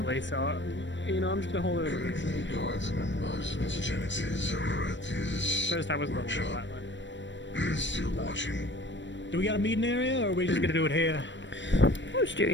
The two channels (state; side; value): late; right; 0.53 ms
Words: so, you know, I'm just gonna hold it over. First I was a little bit violent. Do we got a meeting area, or are we just gonna do it here? I'll just do